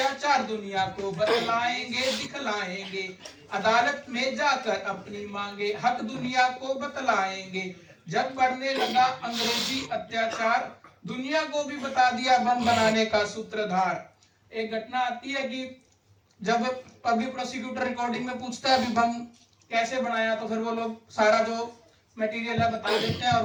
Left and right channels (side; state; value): both; identical; correlation 1.00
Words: दुनिया को बतलाएंगे दिखलाएंगे, अदालत में जाकर अपनी मांगे हक दुनिया को बतलाएंगे, जब बढ़ने लगा अंग्रेजी अत्याचार दुनिया को भी बता दिया बम बनाने का सूत्रधार। एक घटना आती है कि जब पब्लिक प्रोसिक्यूटर रिकॉर्डिंग में पूछता है अभी बम कैसे बनाया, तो फिर वो लोग सारा जो मटेरियल है बता देते हैं और